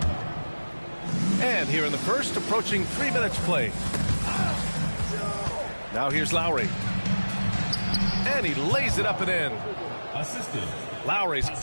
And here in the first, approaching 3 minutes played. Now here's Lowry. And he lays it up and in. Assisted. Lowry's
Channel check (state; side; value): inverted; both; correlation -1.00